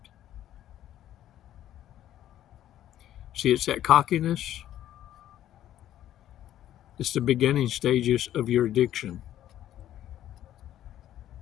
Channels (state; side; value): quieter; right; 12.1 dB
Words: See, it's that cockiness. It's the beginning stages of your addiction.